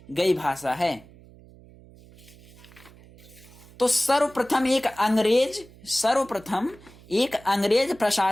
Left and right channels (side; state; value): right; noise; hum, 23 dB below the sound